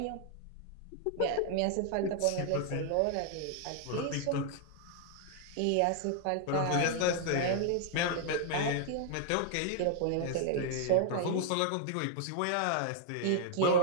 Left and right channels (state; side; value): different; both; correlation 0.00